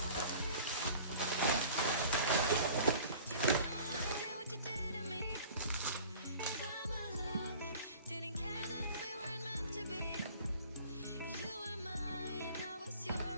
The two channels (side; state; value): both; inverted; correlation -0.44